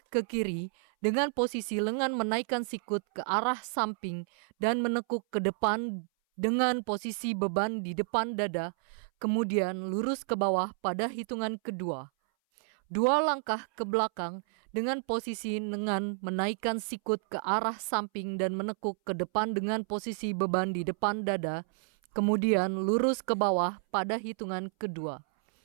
ke kiri dengan posisi lengan menaikkan sikut ke arah samping dan menekuk ke depan dengan posisi beban di depan dada, kemudian lurus ke bawah pada hitungan kedua. 2 langkah ke belakang dengan posisi lengan menaikkan sikut ke arah samping dan menekuk ke depan dengan posisi beban di depan dada, kemudian lurus ke bawah pada hitungan kedua.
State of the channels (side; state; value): left; silent; 57 dB below the other